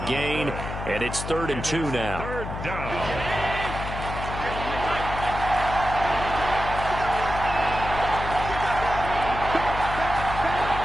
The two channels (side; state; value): left; noise; hum, 7 dB below the sound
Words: and it's 3rd and 2 now. Third down.